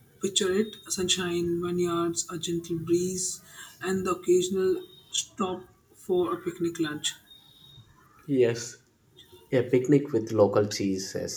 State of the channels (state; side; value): identical; both; correlation 1.00